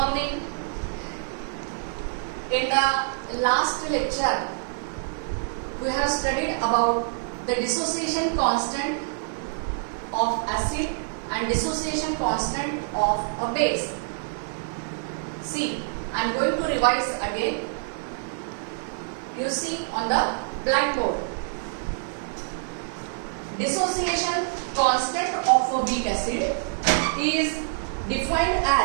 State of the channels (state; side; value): silent; left; digital silence